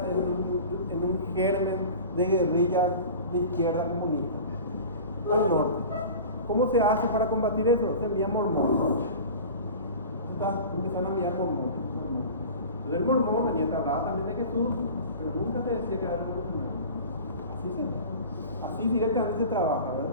en un germen de guerrillas de izquierda comunista? Al norte. ¿Cómo se hace para combatir eso? Se envía mormones. Empiezan a enviar mormones. Entonces el mormón venía a hablar también de Jesús, pero nunca te decía que era revolucionario. Así directamente se trabaja, ¿verdad?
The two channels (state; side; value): inverted; both; correlation -0.37